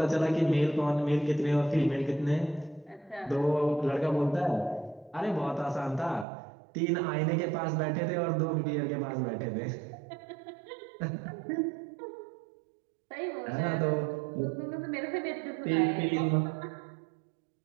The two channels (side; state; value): left; drops out; at 6.2 s